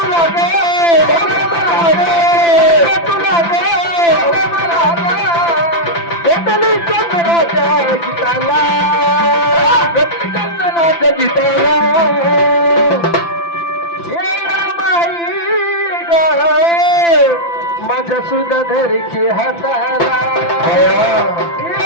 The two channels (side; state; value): right; late; 5.9 ms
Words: माझ्या सुद्धा धरकी हाताला